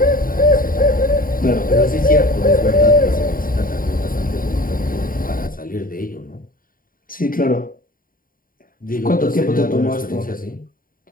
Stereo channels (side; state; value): right; late; 0.41 ms